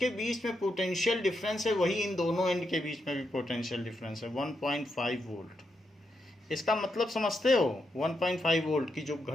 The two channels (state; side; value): normal; both; correlation 0.83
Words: बीच में पोटेंशियल डिफरेंस है, वही इन दोनों एंड के बीच में भी पोटेंशियल डिफरेंस है, 1.5 वोल्ट। इसका मतलब समझते हो, 1.5 वोल्ट की जो